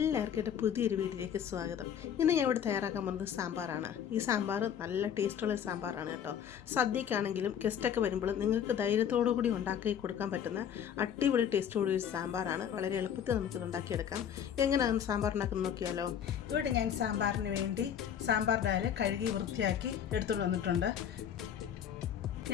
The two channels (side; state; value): right; quieter; 8.8 dB